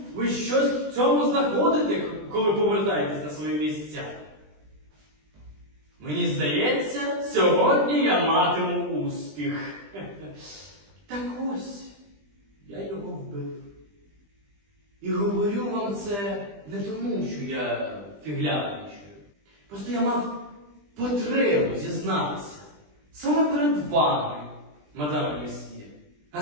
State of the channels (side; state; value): left; late; 20 ms